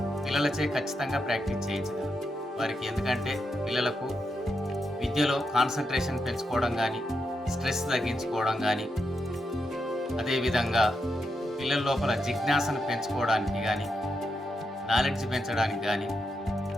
పిల్లలచే ఖచ్చితంగా ప్రాక్టీస్ చేయించగలరు వారికి. ఎందుకంటే పిల్లలకు విద్యలో కాన్సన్ట్రేషన్ పెంచుకోవడం కానీ, స్ట్రెస్ తగ్గించుకోవడం కానీ, అదేవిధంగా పిల్లల లోపల జిజ్ఞాసను పెంచుకోవడానికి కానీ, నాలెడ్జ్ పెంచడానికి కానీ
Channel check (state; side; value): normal; both; correlation 0.84